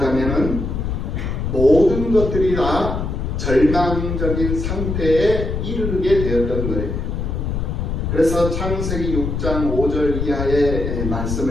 모든 것들이 다 절망적인 상태에 이르게 되었던 거예요. 그래서 창세기 6장 5절 이하의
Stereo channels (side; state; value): left; noise; rumble, 3 dB below the sound